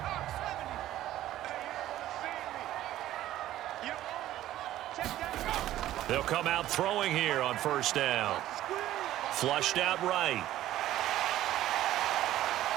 They'll come out throwing here on first down. Flushed out right.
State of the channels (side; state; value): left; quieter; 13.8 dB